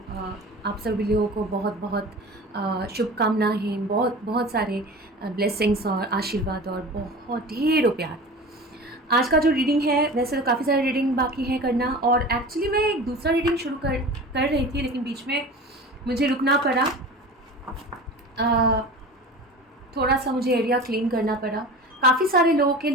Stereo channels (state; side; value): normal; both; correlation 0.36